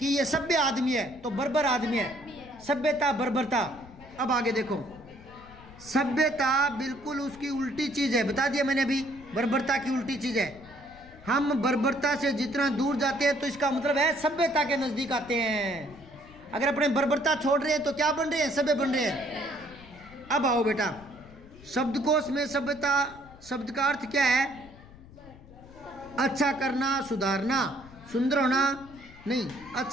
ये सभ्य आदमी है तो बर्बर आदमी है, सभ्यता बर्बरता। अब आगे देखो, सभ्यता बिल्कुल उसकी उल्टी चीज है, बता दिया मैंने अभी, बर्बरता की उल्टी चीज है। हम बर्बरता से जितना दूर जाते हैं तो इसका मतलब है सभ्यता के नजदीक आते हैं। अगर अपने बर्बरता छोड़ रहे हैं तो क्या बन रहे हैं? सभ्य बन रहे हैं। अब आओ बेटा, शब्दकोश में सभ्यता शब्द का अर्थ क्या है? अच्छा करना, सुधारना, सुंदर होना नहीं,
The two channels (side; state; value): left; noise; rumble, 21 dB below the sound